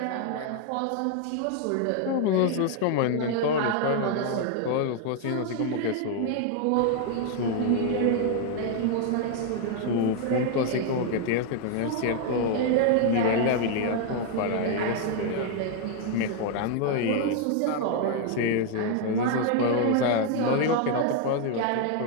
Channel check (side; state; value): both; different; correlation 0.00